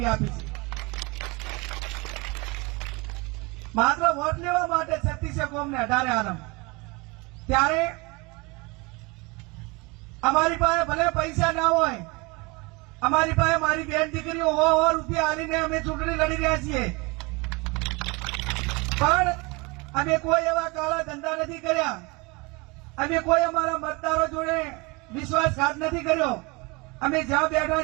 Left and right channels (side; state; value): left; quieter; 25.9 dB